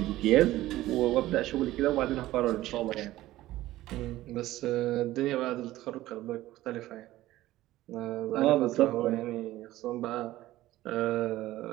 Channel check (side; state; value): left; quieter; 15.9 dB